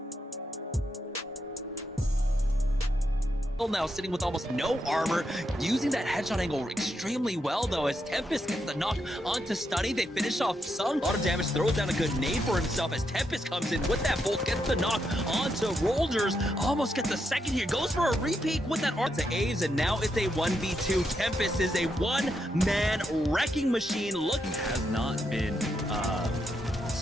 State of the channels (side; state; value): both; normal; correlation 0.82